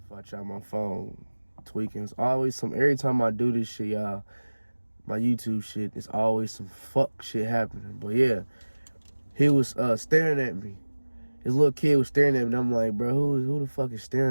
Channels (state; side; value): inverted; both; correlation -1.00